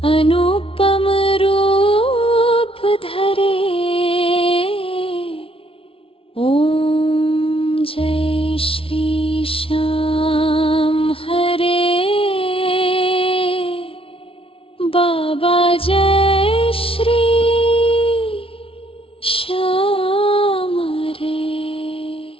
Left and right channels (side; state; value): right; late; 0.26 ms